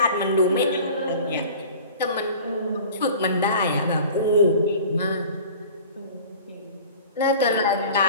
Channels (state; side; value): inverted; both; correlation -0.43